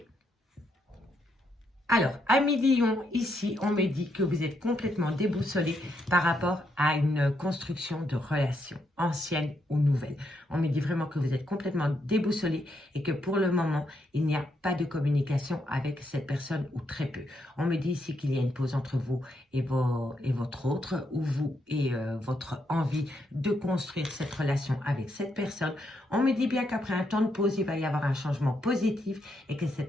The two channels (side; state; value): both; normal; correlation 0.78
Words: Alors, amis Lion, ici, on me dit que vous êtes complètement déboussolé par rapport à une construction de relations, anciennes ou nouvelles. On me dit vraiment que vous êtes complètement déboussolé et que pour le moment, il n'y a pas de communication avec cette personne ou très peu. On me dit ici qu'il y a une pause entre vous et votre autre, ou vous et votre envie de construire cette relation avec cette personne. On me dit bien qu'après un temps de pause, il va y avoir un changement positif et que